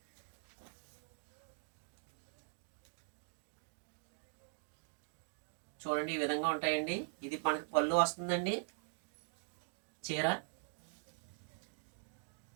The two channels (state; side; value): silent; left; digital silence